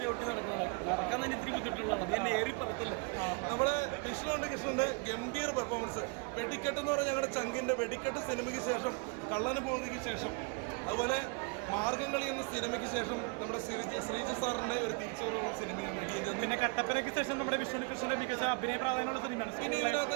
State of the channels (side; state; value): left; quieter; 30.9 dB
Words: നമ്മുടെ കൃഷ്ണന്റെ ഗംഭീര പെർഫോമൻസ്. വെടിക്കെട്ട് എന്ന് പറഞ്ഞാൽ ഞങ്ങളുടെ ചങ്കിന്റെ വെടിക്കെട്ട് സിനിമയ്ക്ക് ശേഷം, കള്ളന് പോകുന്നതിന് ശേഷം, അതുപോലെ മാർഗംകളി എന്ന സിനിമയ്ക്ക് ശേഷം നമ്മുടെ ശ്രീജു സാറിന്റെ ഒരു തിരിച്ചുവരവുള്ള സിനിമയാണ് ഇടിയൻ ചന്ത്. പിന്നെ കട്ടപ്പനയ്ക്ക് ശേഷം നമ്മുടെ വിഷ്ണു കൃഷ്ണന്റെ മികച്ച അഭിനയ പ്രാധാന്യമുള്ള സിനിമയാണ്. പിന്നെ ഇതിനകത്ത്